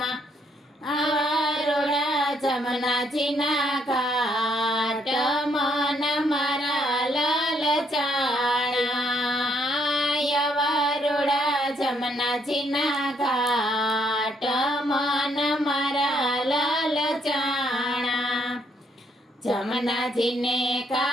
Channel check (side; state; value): both; normal; correlation 0.71